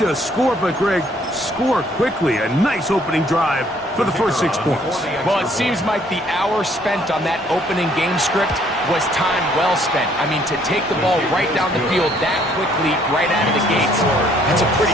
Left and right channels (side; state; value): both; normal; correlation 0.63